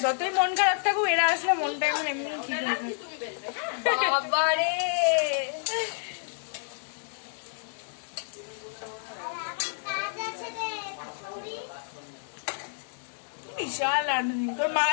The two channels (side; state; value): right; silent; digital silence